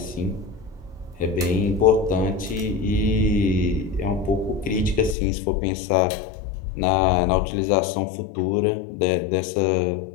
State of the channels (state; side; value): drops out; right; at 5.2 s